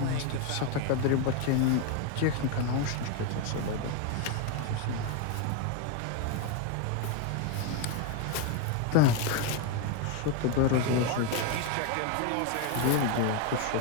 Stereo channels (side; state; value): both; different; correlation 0.02